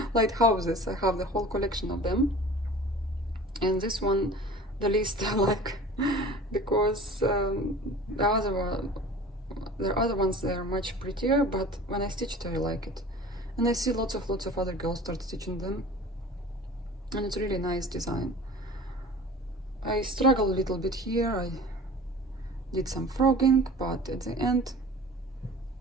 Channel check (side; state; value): both; normal; correlation 0.41